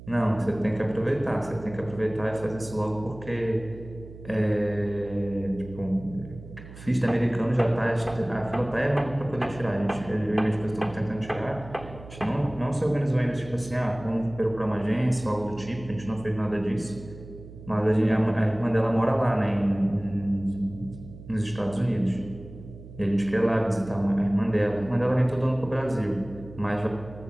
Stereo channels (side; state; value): right; noise; hum, 16 dB below the sound